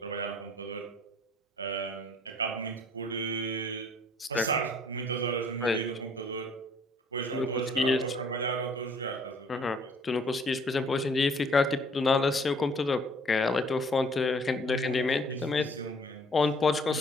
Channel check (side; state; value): both; normal; correlation 0.58